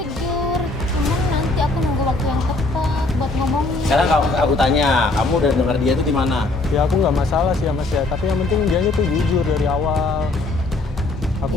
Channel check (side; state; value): right; quieter; 3.1 dB